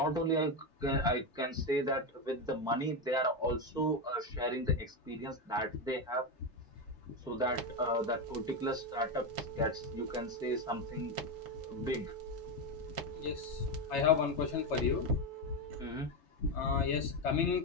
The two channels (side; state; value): both; normal; correlation 0.11